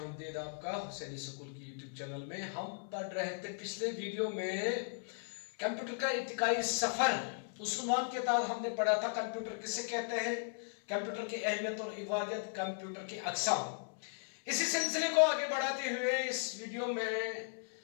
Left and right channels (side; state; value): right; silent; 53 dB below the other